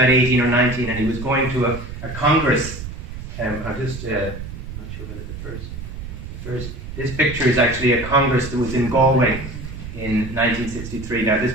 18 or 19, and he was going to a congress. I'm not sure whether the first. This picture is actually a congress that was in Galway in 1963. Now, this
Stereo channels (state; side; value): noise; right; rumble, 9 dB below the sound